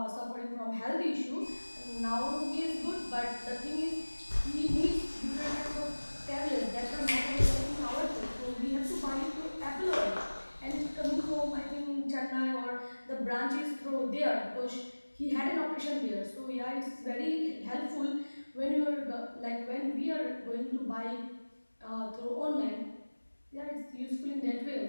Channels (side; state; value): both; inverted; correlation -1.00